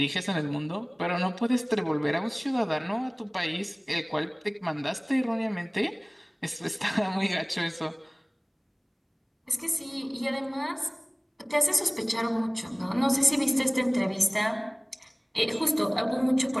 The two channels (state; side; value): identical; both; correlation 1.00